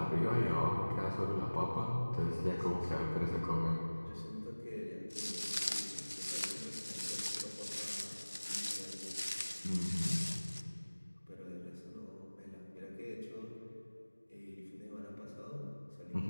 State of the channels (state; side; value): inverted; both; correlation -1.00